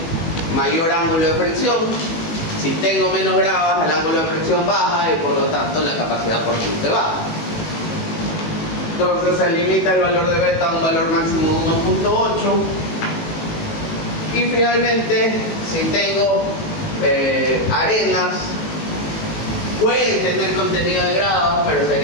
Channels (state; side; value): late; right; 19 ms